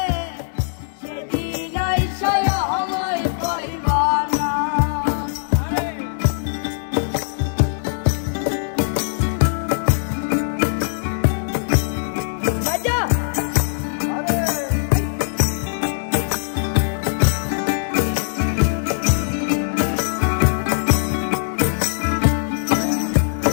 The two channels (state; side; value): silent; right; digital silence